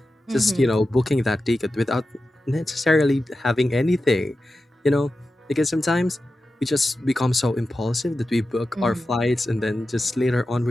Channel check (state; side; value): normal; both; correlation 0.92